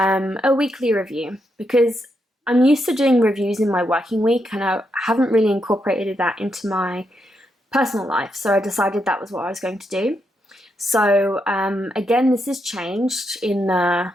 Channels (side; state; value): both; normal; correlation 0.81